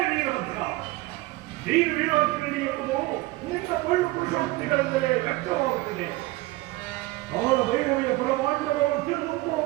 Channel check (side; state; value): left; quieter; 19.8 dB